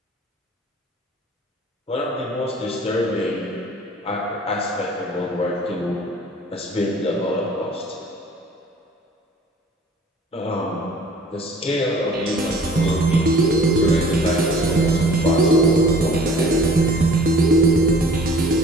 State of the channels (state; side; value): normal; both; correlation 0.50